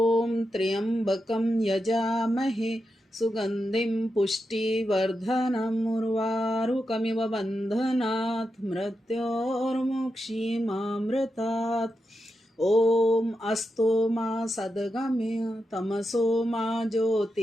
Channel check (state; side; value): normal; both; correlation 0.87